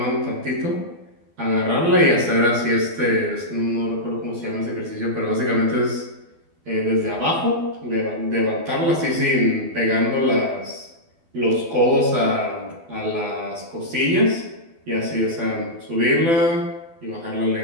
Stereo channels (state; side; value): late; left; 12 ms